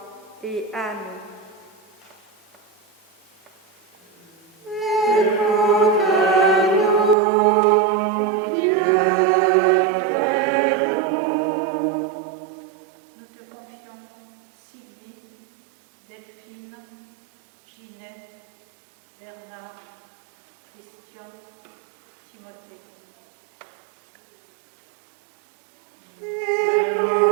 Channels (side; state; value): left; drops out; at 7.2 s